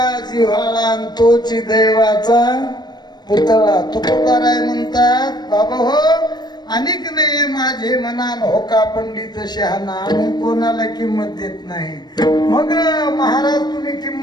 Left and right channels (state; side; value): late; right; 0.20 ms